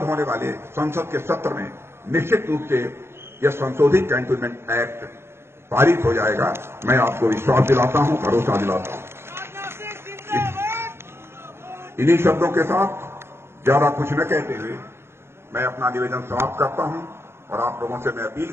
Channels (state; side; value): late; left; 0.12 ms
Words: होने वाले संसद के सत्र में निश्चित रूप से यह संशोधित कैंटोनमेंट एक्ट पारित हो जाएगा। मैं आपको विश्वास दिलाता हूं, भरोसा दिलाता हूं। इन्हीं शब्दों के साथ ज्यादा कुछ न कहते हुए मैं अपना निवेदन समाप्त करता हूं और आप लोगों से मैं अपील